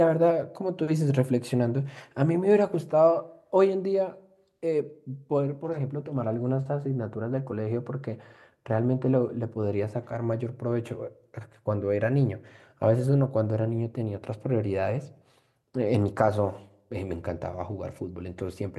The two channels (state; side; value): identical; both; correlation 1.00